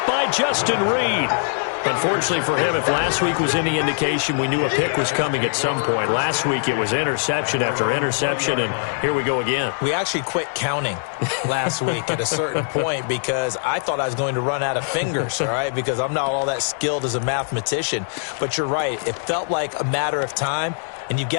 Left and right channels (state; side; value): silent; right; 64 dB below the other